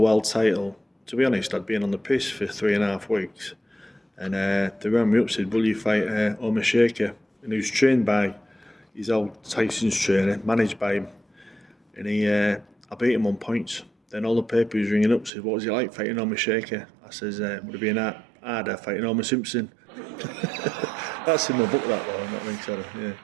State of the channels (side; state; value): left; drops out; at 15.3 s